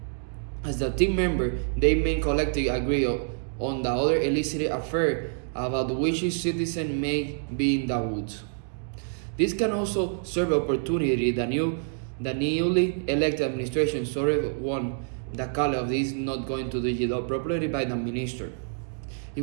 As the team member, they may collectively agree on the other illicit affair about which each citizen may be in the woods. This can also serve opportunity the newly elected administration sort of won the call of this not going to do it job properly by the minister.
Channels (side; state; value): left; silent; digital silence